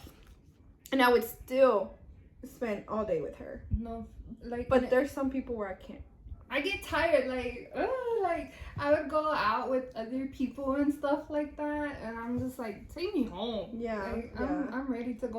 and I would still spend all day with her. No, like, but there's some people where I can't. I get tired, like I would go out with other people and stuff like that, and I'm just like, take me home. Yeah, like, I'm ready to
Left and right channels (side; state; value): both; identical; correlation 1.00